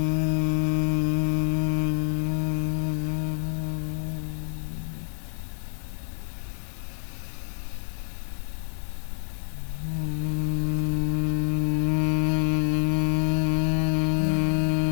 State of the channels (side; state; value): right; silent; digital silence